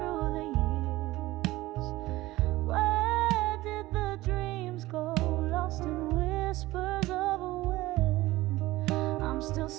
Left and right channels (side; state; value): left; quieter; 18.1 dB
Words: the years. Where did the dreams go, lost in whispers of a wind? I'm still